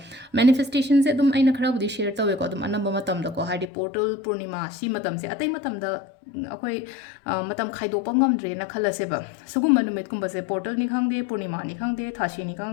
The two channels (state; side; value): drops out; right; at 3.7 s